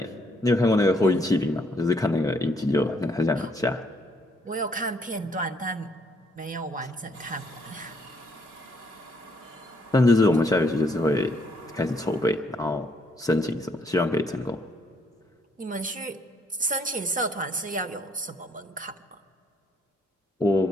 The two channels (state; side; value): normal; both; correlation 0.70